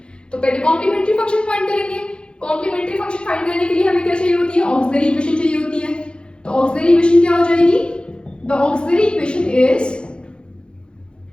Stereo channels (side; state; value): right; late; 0.053 ms